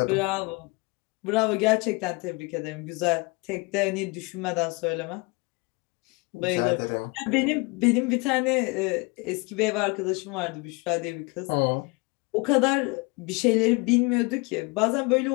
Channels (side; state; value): right; quieter; 27.6 dB